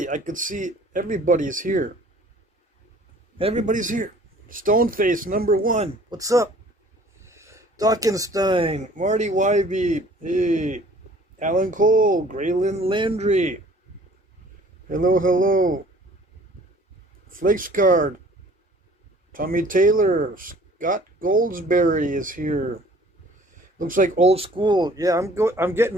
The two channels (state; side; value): normal; both; correlation 0.52